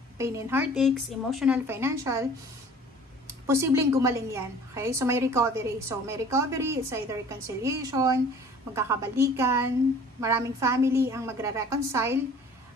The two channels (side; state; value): both; normal; correlation 0.48